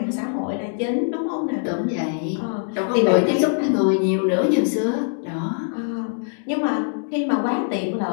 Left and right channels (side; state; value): right; silent; digital silence